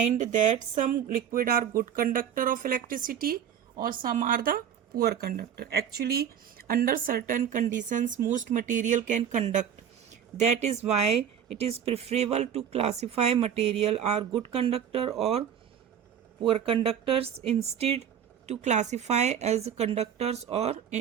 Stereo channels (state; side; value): quieter; left; 8.7 dB